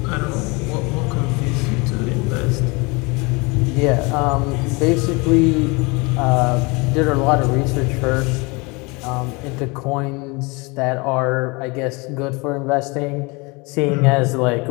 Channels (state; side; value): quieter; right; 27.4 dB